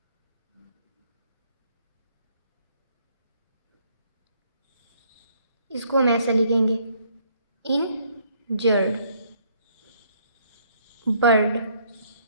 इसको हम ऐसे लिखेंगे, इंजर्ड। बर्ड।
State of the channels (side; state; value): both; inverted; correlation -0.66